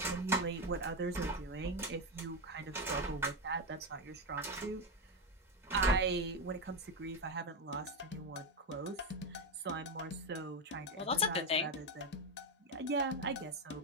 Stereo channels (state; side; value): normal; both; correlation 0.10